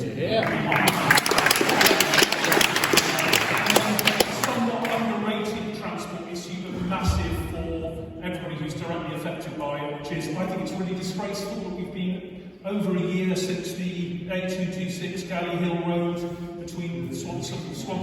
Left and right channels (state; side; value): identical; both; correlation 1.00